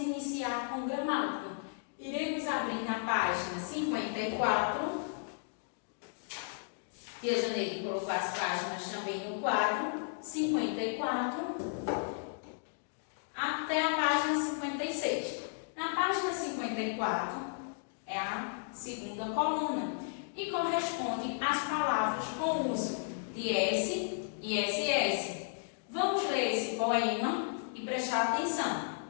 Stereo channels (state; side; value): silent; right; digital silence